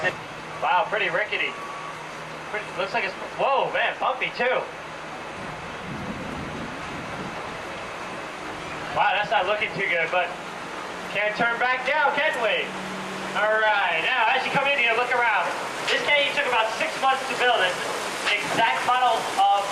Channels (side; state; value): both; identical; correlation 1.00